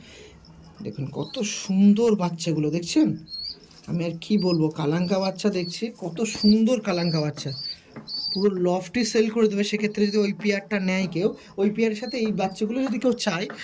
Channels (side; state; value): both; identical; correlation 1.00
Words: দেখুন কত সুন্দর বাচ্চাগুলো, দেখছেন? আমি আর কি বলবো, কালাঙ্কা বাচ্চা দেখছি, কত সুন্দর কালাঙ্কা বাচ্চা, পুরো লফটি সেল করে দেবে। সেক্ষেত্রে যদি ওই পেয়ারটা নেয় কেউ, ওই পেয়ারের সাথে এই বাচ্চাগুলো যদি কেউ চায়